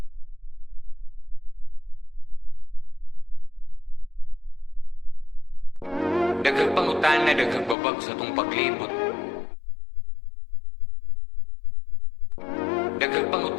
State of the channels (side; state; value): right; drops out; at 7.8 s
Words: Daghang pangutana, daghang babag sa tong paglibot. Daghang